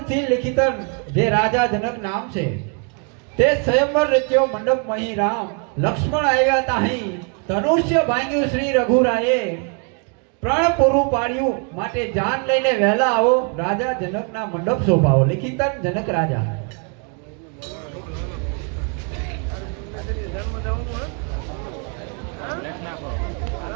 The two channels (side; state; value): left; quieter; 38.1 dB